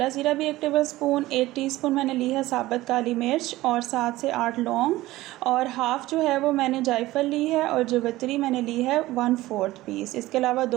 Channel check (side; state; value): left; quieter; 17.4 dB